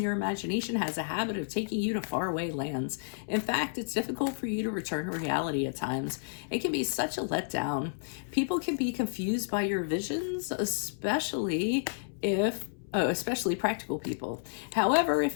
your imagination has a habit of taking you to faraway lands. In fact, it's difficult for you to return to reality at times. It can be such a letdown. People can be confused by your visions, especially practical people. However,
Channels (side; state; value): right; silent; 57 dB below the other